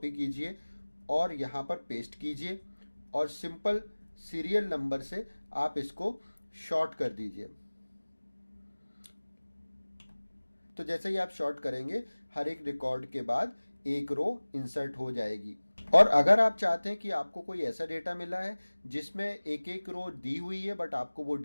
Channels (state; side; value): inverted; both; correlation -1.00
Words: कीजिए और यहाँ पर पेस्ट कीजिए और सिंपल सीरियल नंबर से आप इसको शॉर्ट कर दीजिए। तो जैसे ही आप शॉर्ट करेंगे हर एक रिकॉर्ड के बाद एक रो इंसर्ट हो जाएगी। और अगर आप चाहते हैं कि आपको कोई ऐसा डेटा मिला है जिसमें एक एक रो दी हुई है बट आपको वो